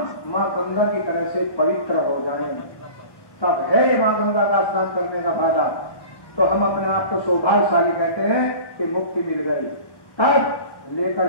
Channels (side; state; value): right; late; 1.2 ms